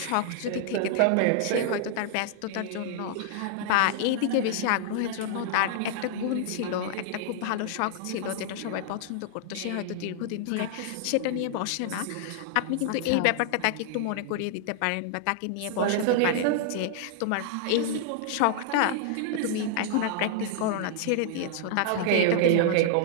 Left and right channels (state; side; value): different; both; correlation -0.01